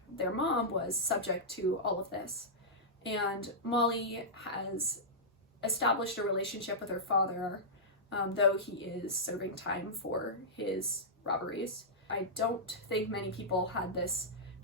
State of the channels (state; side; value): normal; both; correlation -0.13